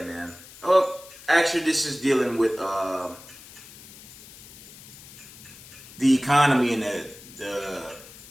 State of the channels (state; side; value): noise; left; hiss, 19 dB below the sound